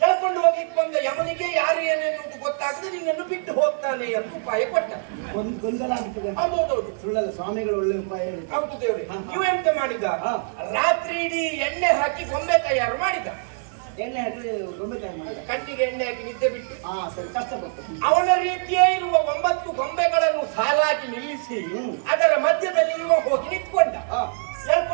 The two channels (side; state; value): left; silent; digital silence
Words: ಎಳ್ಕೊಂಡು ಹೋಗ್ಲಿಕ್ಕೆ ಬಂದ ಯಮನಿಗೆ ಯಾರು ಏನೆನ್ನುವುದು ಗೊತ್ತಾಗದೆ ನಿನ್ನನ್ನು ಬಿಟ್ಟು ಹೋಗ್ತಾನೆ ಅಂತ ಉಪಾಯ ಕೊಟ್ಟ. ಗೊಂದಲ ಆಗ್ತದೆ. ಹೌದೌದು, ಸುಳ್ಳಲ್ಲ, ಸ್ವಾಮಿಗಳು ಒಳ್ಳೆ ಉಪಾಯ ಹೇಳಿದ್ರು. ಹೌದು ದೇವ್ರೆ. ಇವೆಂತ ಮಾಡಿದ, ರಾತ್ರಿ ಇಡೀ ಎಣ್ಣೆ ಹಾಕಿ ಗೊಂಬೆ ತಯಾರು ಮಾಡಿದ. ಎಣ್ಣೆ ಹಾಕಿ ಗೊಂಬೆ ತಯಾರು ಮಾಡಿದ. ಕಣ್ಣಿಗೆ ಎಣ್ಣೆ ಹಾಕಿ ನಿದ್ದೆ ಬಿಟ್ಟು. ಸರಿ, ಕಷ್ಟಪಟ್ಟು ಅವನ ರೀತಿಯೇ ಇರುವ 9 ಗೊಂಬೆಗಳನ್ನು ಸಾಲಾಗಿ ನಿಲ್ಲಿಸಿ ಅದರ ಮಧ್ಯದಲ್ಲಿ ಇವ ಹೋಗಿ ನಿಂತ್ಕೊಂಡ.